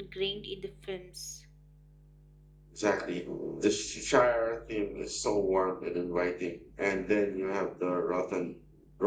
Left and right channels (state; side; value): identical; both; correlation 1.00